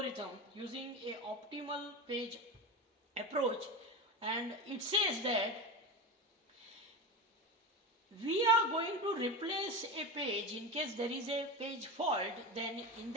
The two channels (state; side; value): normal; both; correlation 0.21